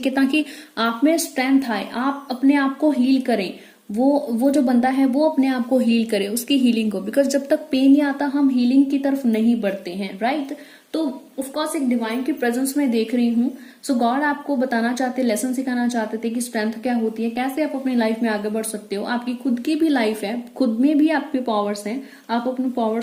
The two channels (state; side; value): identical; both; correlation 1.00